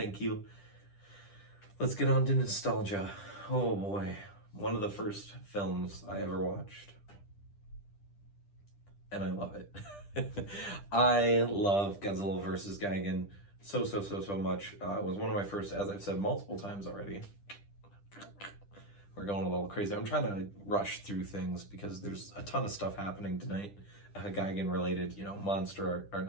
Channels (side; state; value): right; late; 10 ms